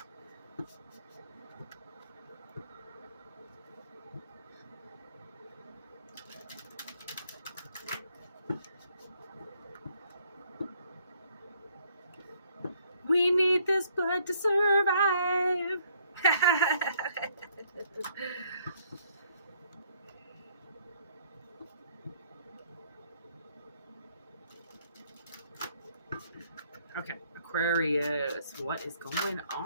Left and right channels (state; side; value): inverted; both; correlation -0.66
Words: We need this blood to survive. Okay, Aquarius, what is going